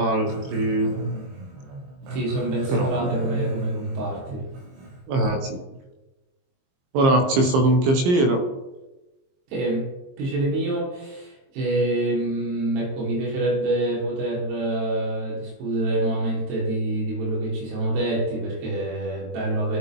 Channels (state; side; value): late; left; 22 ms